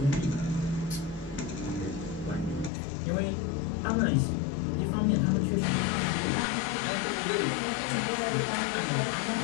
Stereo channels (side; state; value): right; drops out; at 2.7 s